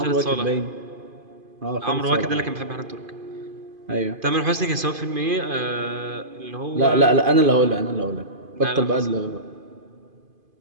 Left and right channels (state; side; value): late; left; 2.5 ms